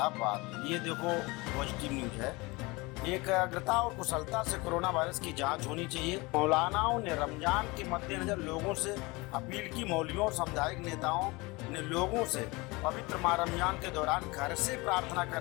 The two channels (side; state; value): right; quieter; 24.2 dB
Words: बात, ये देखो पॉजिटिव न्यूज है। एकाग्रता और कुशलता से कोरोना वायरस की जांच होनी चाहिए। मौलानाओं ने रमजान के मद्देनजर लोगों से अपील की। मौलवियों और सामुदायिक नेताओं ने लोगों से पवित्र माह रमजान के दौरान घर से प्रार्थना